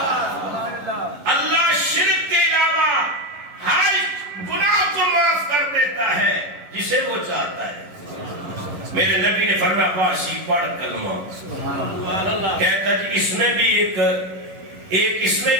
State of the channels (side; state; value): left; late; 11 ms